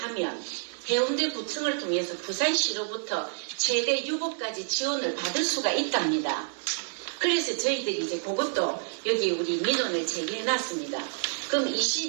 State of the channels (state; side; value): silent; left; 59 dB below the other